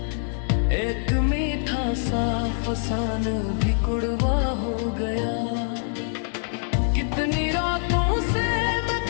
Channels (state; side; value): silent; right; 62 dB below the other